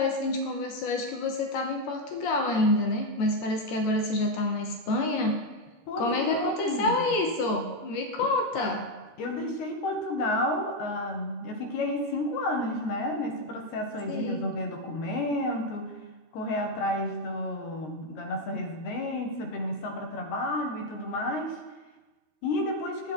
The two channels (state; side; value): late; right; 13 ms